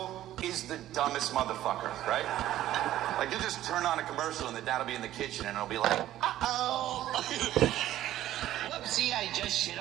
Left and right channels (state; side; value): quieter; left; 13.4 dB